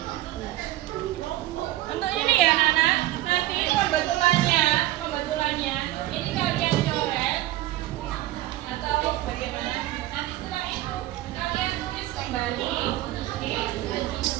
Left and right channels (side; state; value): left; quieter; 15.9 dB